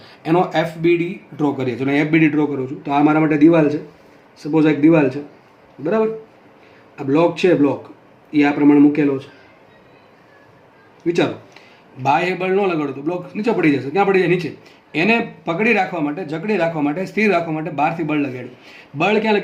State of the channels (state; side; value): identical; both; correlation 1.00